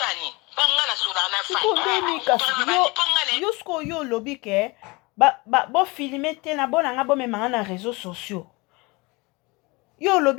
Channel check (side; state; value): right; quieter; 25.3 dB